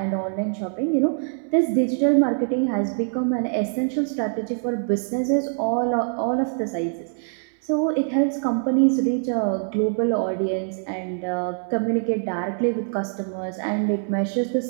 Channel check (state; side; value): silent; left; 61 dB below the other